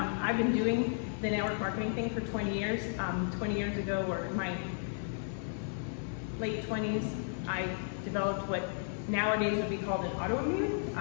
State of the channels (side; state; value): right; silent; 55 dB below the other